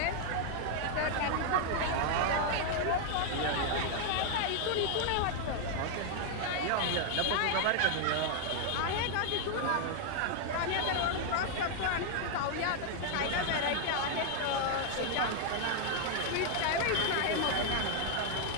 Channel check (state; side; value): different; both; correlation 0.00